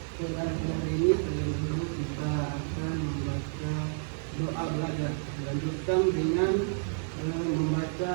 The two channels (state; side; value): silent; left; 58 dB below the other